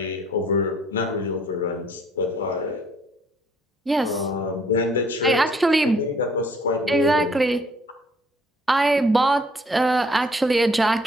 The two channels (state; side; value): normal; both; correlation 0.61